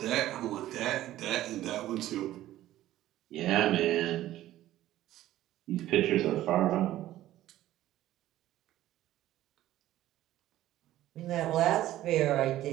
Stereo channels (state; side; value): quieter; left; 14.2 dB